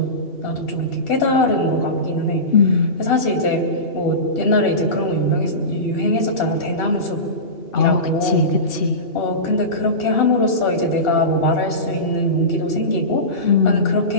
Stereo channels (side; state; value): right; late; 2.8 ms